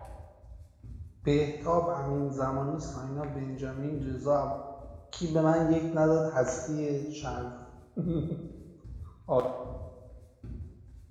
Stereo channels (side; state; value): both; identical; correlation 1.00